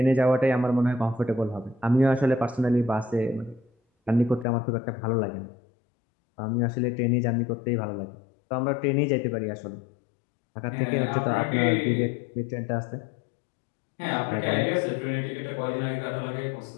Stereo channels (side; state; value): right; drops out; at 4.5 s